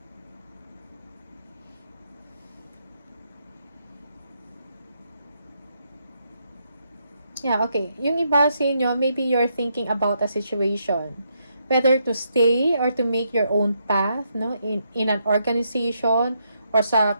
Yeah, okay. Yung iba sa inyo, maybe you're thinking about a situation. Whether to stay or to make your own path, no? In an organization or sa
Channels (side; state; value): both; inverted; correlation -0.78